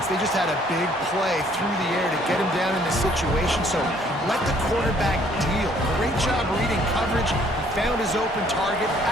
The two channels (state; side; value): normal; both; correlation 0.62